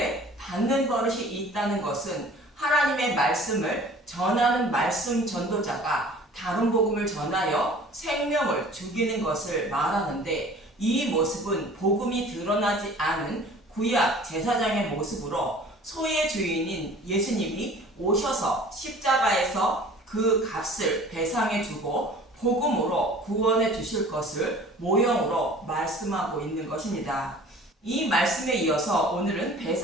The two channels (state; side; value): normal; both; correlation 0.47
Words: 받는 버릇이 있다는 것은 하나님의 말씀을 전하는 말씀 전도자가 다른 복음을 전하여 생명을 죽이는 것을 말하는데, 이 모습은 복음이 드러나지 않은 구약 제사장의 모습으로 소의 주인인 예수님이 오셔서 십자가에서 그 값을 배상해 주고 복음으로 구원해 주실 것을 모형으로 말씀하고 있는 것입니다. 이 말씀에 이어서 오늘은